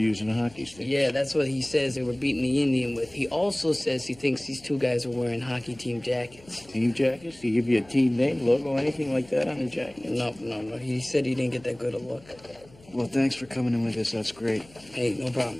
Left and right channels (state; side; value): noise; left; hum, 25 dB below the sound